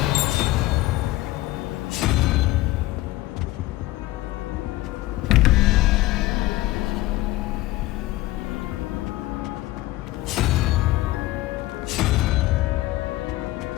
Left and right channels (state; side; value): quieter; right; 17.8 dB